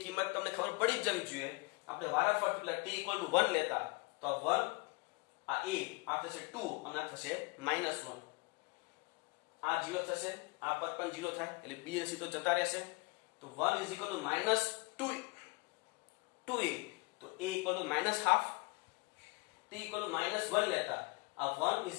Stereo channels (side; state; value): right; quieter; 28.2 dB